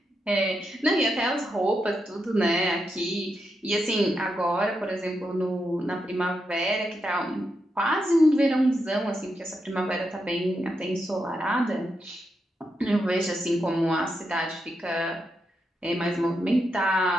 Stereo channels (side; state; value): both; normal; correlation 0.84